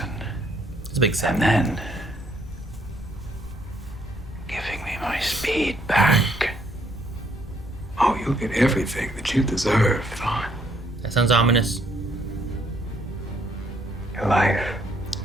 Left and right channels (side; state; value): both; normal; correlation 0.68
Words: It's a big And set. then giving me my speed back. Oh, you'll get everything that you deserve, Thawne. That sounds ominous. Your life.